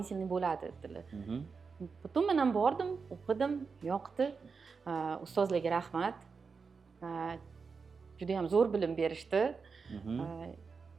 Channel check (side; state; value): left; quieter; 5.1 dB